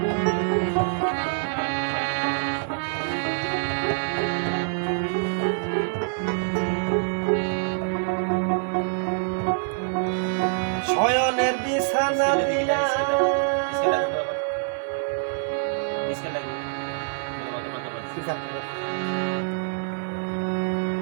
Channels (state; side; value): silent; left; digital silence